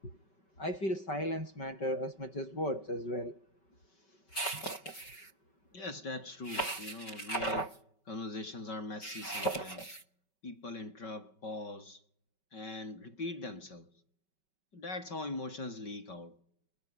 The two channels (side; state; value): right; late; 5.3 ms